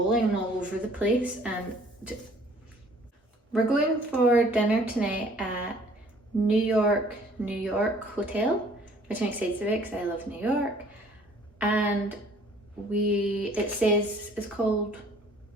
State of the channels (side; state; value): both; normal; correlation 0.56